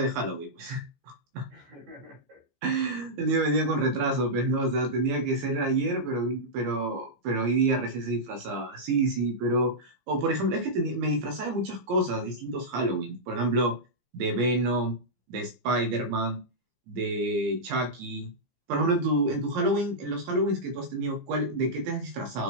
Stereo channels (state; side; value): late; left; 15 ms